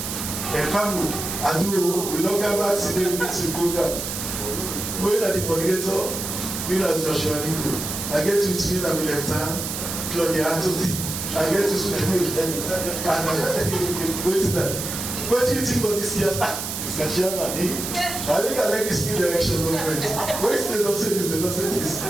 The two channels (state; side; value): noise; right; hiss, 5 dB below the sound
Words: family. I do, we don't come back to the ministry program. Going at the coordinator, me as Joshua Nico. I get to spin on the left hand, Claudia Anthony. I get to swim with them. And wait to that. What do you think about this year's? Mr. Chairman, I think I like this new direction movement. Wait, they don't say this, they don't say this. I